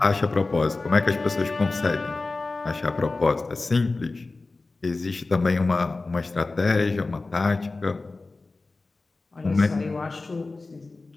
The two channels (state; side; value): quieter; right; 3.5 dB